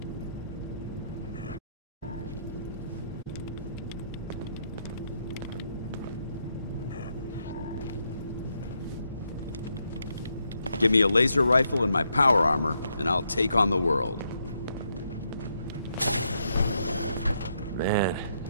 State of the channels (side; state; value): both; inverted; correlation -0.78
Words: Give me a laser rifle and my power armor, and I'll take on the world. Man,